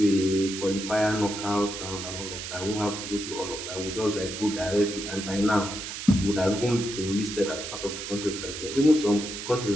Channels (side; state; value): right; noise; hiss, 7 dB below the sound